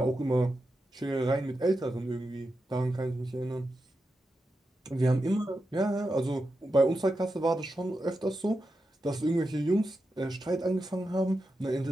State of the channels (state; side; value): normal; both; correlation 0.89